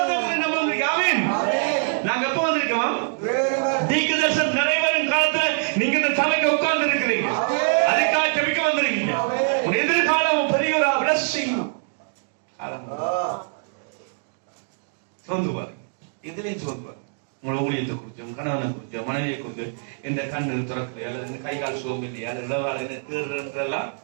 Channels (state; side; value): silent; left; digital silence